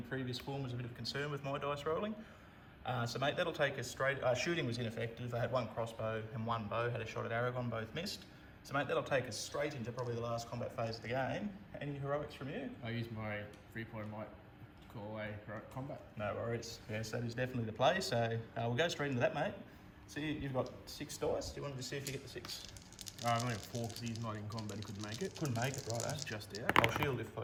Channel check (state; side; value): identical; both; correlation 1.00